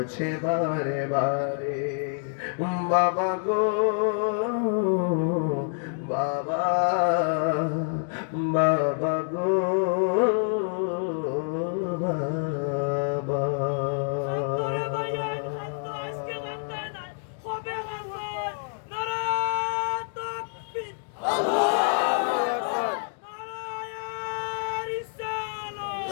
বারে বারে। বাবা গো বাবা, বাবা গো বাবা।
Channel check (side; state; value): right; silent; digital silence